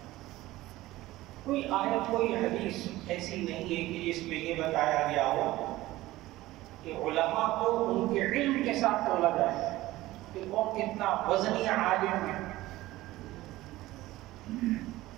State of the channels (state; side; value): quieter; left; 17.3 dB